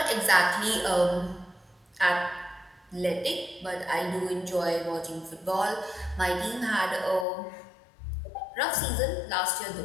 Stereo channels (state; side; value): drops out; right; at 7.2 s